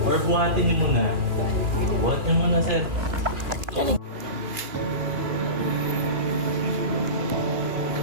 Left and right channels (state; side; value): late; left; 2.5 ms